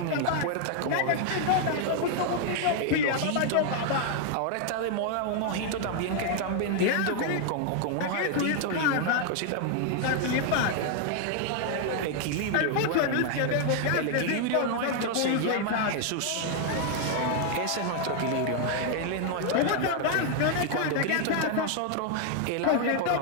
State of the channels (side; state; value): both; different; correlation 0.00